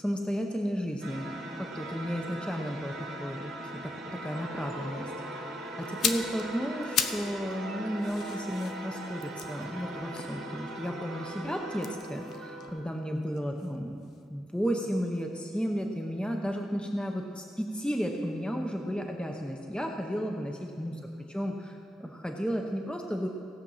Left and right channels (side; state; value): both; normal; correlation 0.85